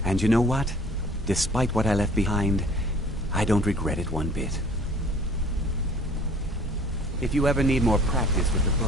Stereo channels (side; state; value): both; normal; correlation 0.51